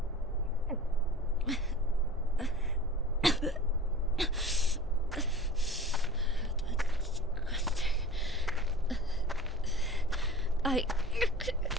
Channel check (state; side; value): normal; both; correlation 0.40